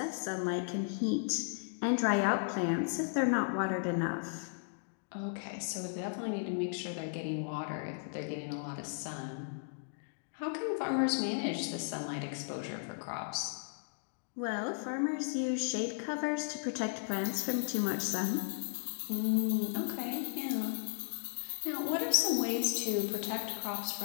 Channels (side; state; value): right; silent; digital silence